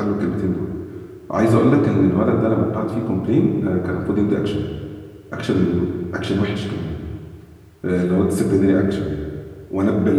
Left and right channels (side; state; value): both; identical; correlation 1.00